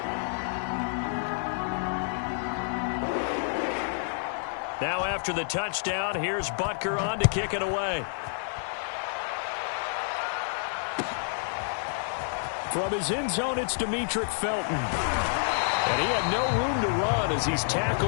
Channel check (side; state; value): right; silent; digital silence